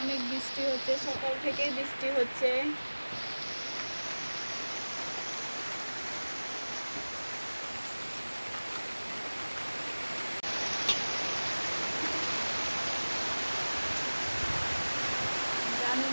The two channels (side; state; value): both; inverted; correlation -1.00